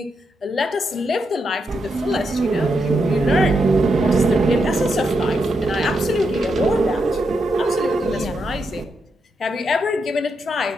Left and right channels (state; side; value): normal; both; correlation 0.83